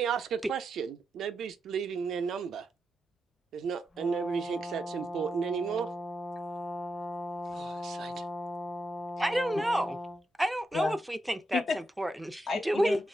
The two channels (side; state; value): both; normal; correlation 0.85